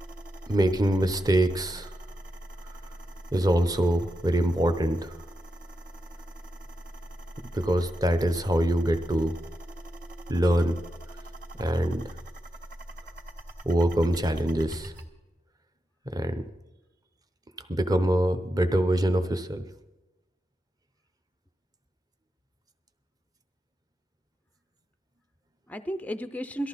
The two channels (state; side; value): normal; both; correlation 0.87